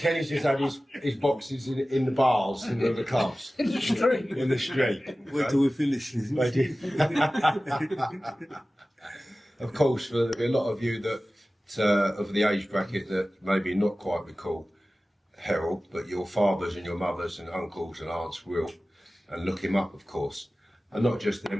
just had his boxes in the bars, in the clubs. In the street. In the street. Wait till we finish this. Of course, there'll be a lot of you that of the age bracket that maybe not quite recall Herol, but your fathers and your mothers and uncles and aunts will, and look him up, of course. And not just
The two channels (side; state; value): both; normal; correlation 0.96